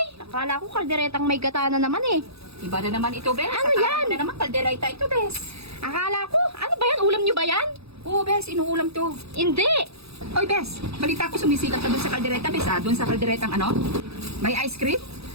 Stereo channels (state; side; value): late; left; 0.78 ms